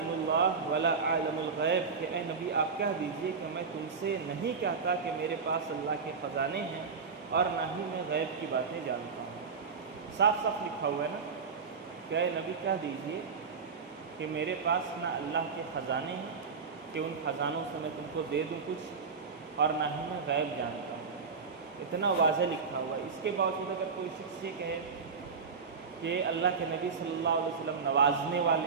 اللَّهِ وَلَا أَعْلَمُ الْغَيْبَ کہ اے نبی آپ کہہ دیجئے کہ میں تم سے نہیں کہتا کہ میرے پاس اللہ کے خزانے ہیں، اور نہ ہی میں غیب کی باتیں جانتا ہوں۔ صاف صاف لکھا ہوا ہے نا کہ اے نبی کہہ دیجئے کہ میرے پاس نہ اللہ کے خزانے ہیں کہ ان خزانوں سے میں تم کو دے دوں کچھ، اور نہ ہی میں غیب جانتا ہوں۔ اتنا واضح لکھا ہوا ہے۔ اس کے باوجود اگر کوئی شخص یہ کہے کہ اللہ کے نبی صلی اللہ علیہ وسلم نوازنے والے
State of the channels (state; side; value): quieter; left; 5.3 dB